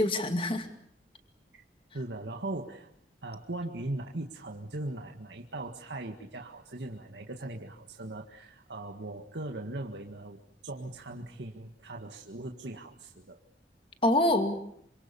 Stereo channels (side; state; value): both; normal; correlation 0.42